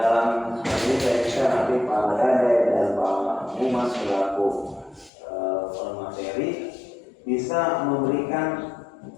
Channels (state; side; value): drops out; right; at 5.1 s